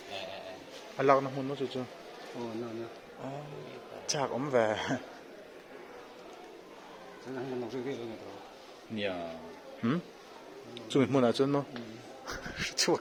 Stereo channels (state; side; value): identical; both; correlation 1.00